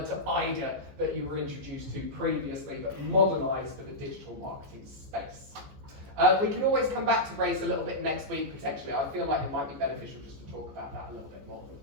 to IDA that you were introduced to previously, but modernized for the digital marketing space. We can always come back to RACE a little bit next week, potentially. I feel like it might be beneficial just to talk about that a little bit more.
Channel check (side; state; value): left; late; 14 ms